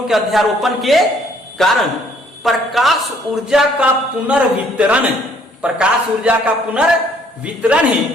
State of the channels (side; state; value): both; normal; correlation 0.62